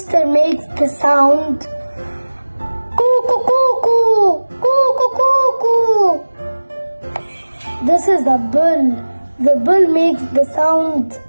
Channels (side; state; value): both; inverted; correlation -1.00